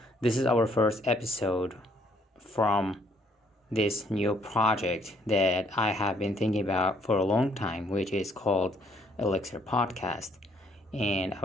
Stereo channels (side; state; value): both; normal; correlation 0.67